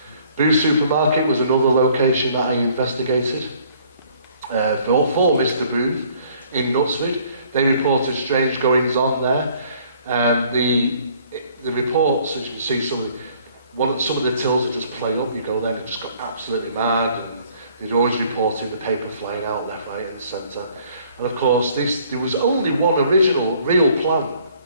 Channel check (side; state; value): both; inverted; correlation -0.59